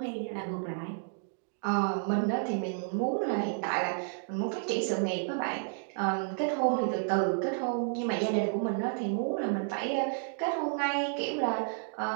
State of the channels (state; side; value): silent; left; digital silence